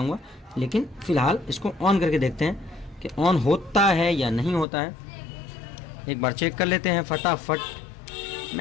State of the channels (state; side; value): drops out; right; at 4.7 s